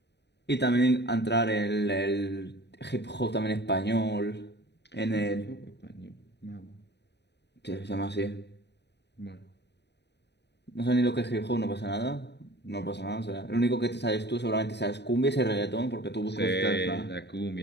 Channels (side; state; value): right; late; 0.50 ms